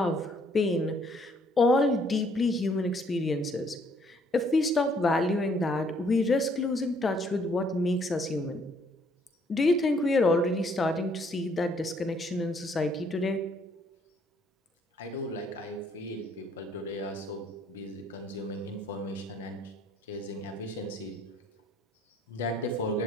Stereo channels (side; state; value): both; normal; correlation 0.65